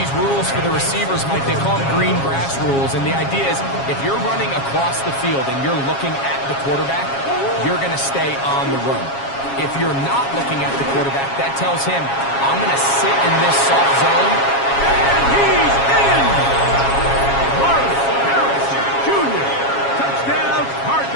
rules for the receivers, Mike. They call them green grass rules. And the idea is if you're running across the field and you're looking at the quarterback, you're going to stay on the run. If you're not looking at the quarterback, that tells him, I'm going to sit in this soft zone. And he's in! Marvin Harrison Jr. Touchdown,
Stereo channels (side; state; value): right; late; 7.3 ms